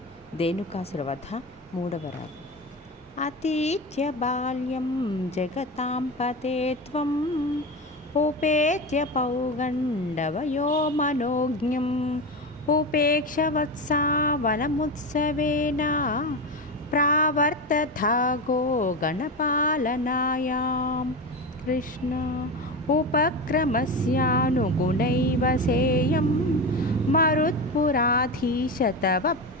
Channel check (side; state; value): both; normal; correlation 0.21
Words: ధేనుకాసుర వధ. 3వ రాగం. అతీత్య బాల్యం జగతాం పతే త్వం ఉపేత్య పౌగండవయో మనోజ్ఞం ఉపేక్ష వత్సా వనముత్సవేన ప్రావర్తథాగో గణపాలనాయాం. కృష్ణ ఉపక్రమస్యానుగుణైవ సేయం మరుత్పురాధీశ తవ